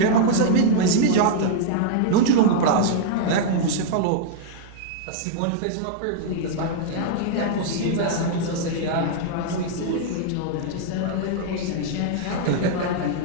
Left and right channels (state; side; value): different; both; correlation -0.01